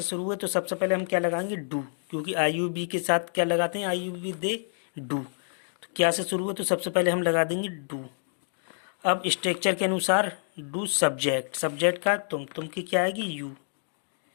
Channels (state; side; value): silent; right; digital silence